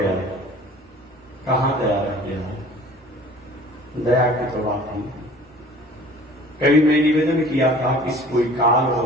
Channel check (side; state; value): both; normal; correlation 0.47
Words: है, कहां दया रह गया है? दया की तो बात नहीं। कभी मैं निवेदन किया था कि कोई काल